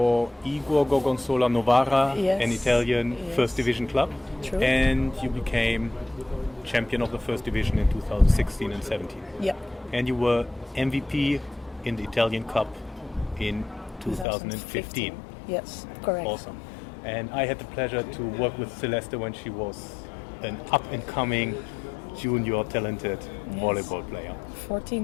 Igor Gorgonzola Novara, Yes. an Italian Yes. first division club. True. And you became champion of the first division in 2016 and 17. Yeah. And you were MVP in the Italian Cup in 2015. Yes, correct. Awesome. And I had the pleasure to work with Celeste when she was an up-and-coming junior talented volleyball player. 14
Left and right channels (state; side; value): drops out; right; at 14.2 s